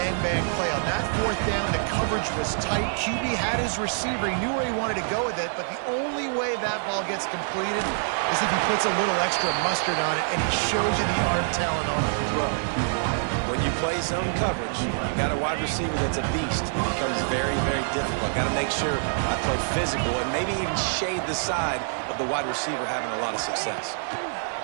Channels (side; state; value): left; silent; 61 dB below the other